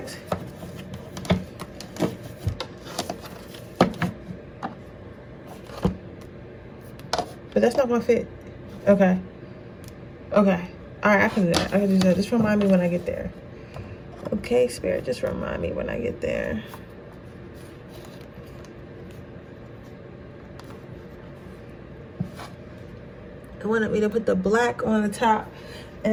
But that's not gonna fit. Okay. Okay. Alright, I can do that. I can do that. Just remind me when I get there. Okay, Spirit, just remind me when I get there. I wanted me to put the black on the top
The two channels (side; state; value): both; identical; correlation 1.00